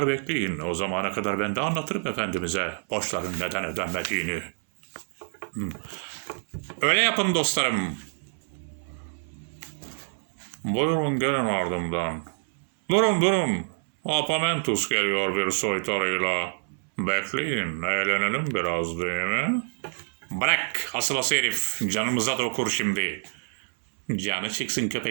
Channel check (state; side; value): silent; left; 60 dB below the other